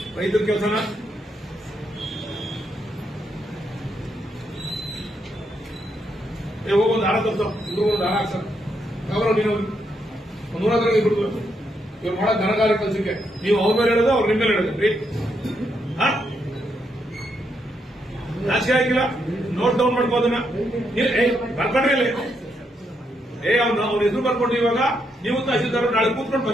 ರೈತರ ಕೆಲಸನ ಹೋಗೊಂದು ಹಾರ ತರ್ಸೋ, ಇಬ್ರು ಒಂದು ಹಾರ ಹಾಕ್ಸರ್ ಅವರ ನೀನು ಒಂದು 100 ಇಬ್ರು ಇವ್ರು ಮಾಡೋ ಘನಕಾರ್ಯ ಕೆಲಸಕ್ಕೆ ನೀವು ಅವ್ರ ಮೇಲೆ ಹೇಳೋದು, ಅವ್ರು ನಿಮ್ಮ ಮೇಲೆ ಹೇಳೋದ್ರಿ. ನಾಚಿಕೆ ಆಗಿಲ್ಲ? ನೋಟ್ ಡೌನ್ ಮಾಡ್ಕೋದನ್ನ ಬರ್ಕೊಂಡ್ರಿ ಇಲ್ಲಿ. ಅವ್ನ ಹೆಸರು ಬರ್ಕೊಂಡು ಇವಾಗ ನೀವು ತಹಶೀಲ್ದಾರ್ ನಾಳೆ ಕೂತ್ಕೊಂಡು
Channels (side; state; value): both; normal; correlation 0.79